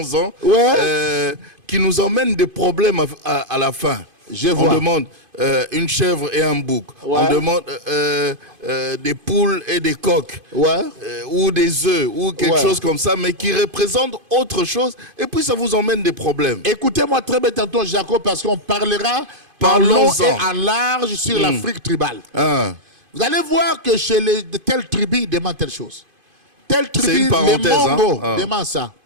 qui nous emmènent des problèmes à la fin. On demande une chèvre et un bouc. On demande des poules et des coqs. Ou des œufs, ou quelque chose comme ça, mais qui représente autre chose. Et puis ça vous emmène des problèmes. Écoutez-moi très bien tantôt, Jacob, parce qu'on parlera en long et en large sur l'Afrique tribale. Vous allez voir que chez les telles tribus, ils demandent telle chose. telle tribu, une les parenthèse, Mongos hein. demandent ça.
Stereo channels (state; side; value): late; left; 2.5 ms